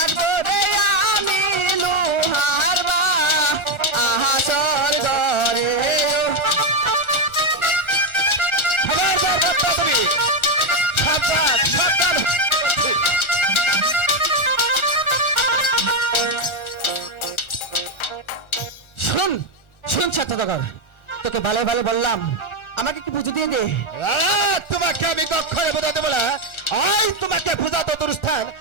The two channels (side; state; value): right; late; 1.3 ms